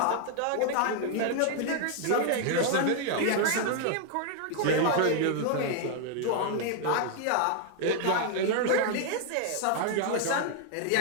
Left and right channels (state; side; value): different; both; correlation 0.00